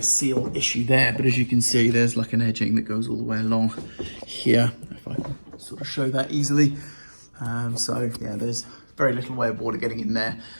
seal issue there, but as you can see, there's like an edging that goes all the way along here, if I can sort of show that easily. So yeah, there's very little way of water getting in there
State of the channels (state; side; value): inverted; both; correlation -1.00